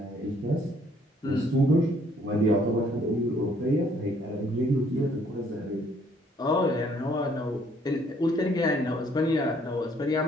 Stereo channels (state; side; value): normal; both; correlation 0.64